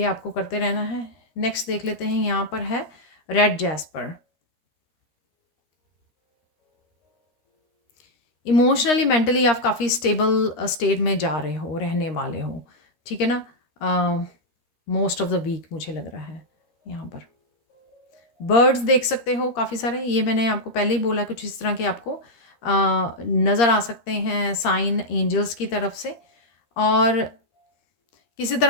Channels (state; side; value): late; right; 13 ms